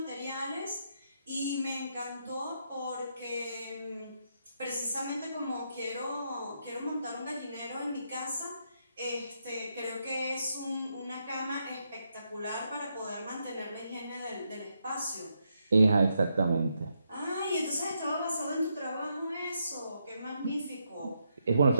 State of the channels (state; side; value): inverted; both; correlation -0.80